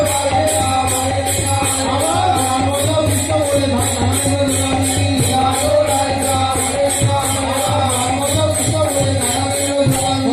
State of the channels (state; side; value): identical; both; correlation 1.00